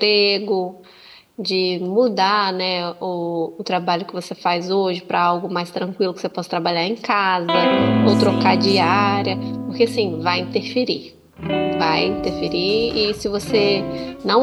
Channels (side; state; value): both; identical; correlation 1.00